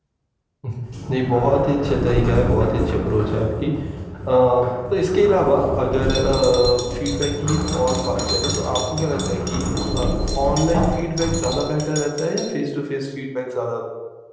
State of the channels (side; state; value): both; identical; correlation 1.00